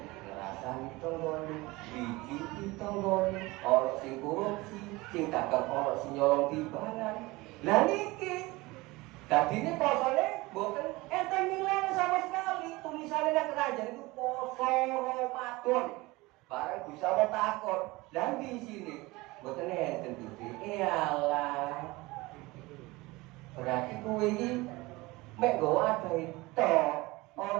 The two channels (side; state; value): left; quieter; 21.8 dB